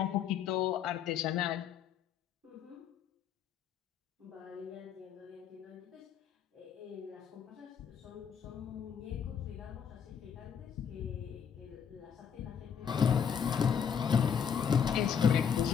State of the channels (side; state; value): right; quieter; 7.6 dB